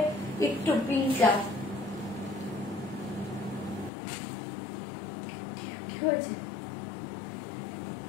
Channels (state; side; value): drops out; right; at 3.9 s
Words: একটু, পিঙ্কটা কি হয়েছে,